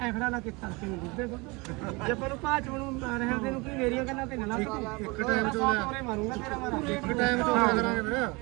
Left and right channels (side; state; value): left; quieter; 26.3 dB